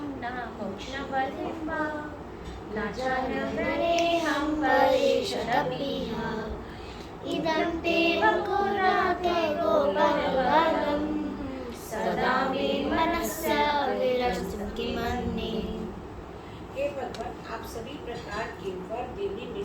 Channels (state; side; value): identical; both; correlation 1.00